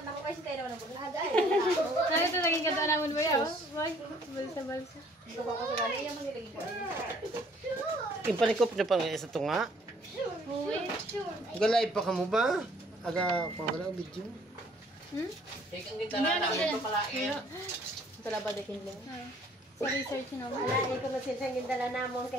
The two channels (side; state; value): both; normal; correlation 0.59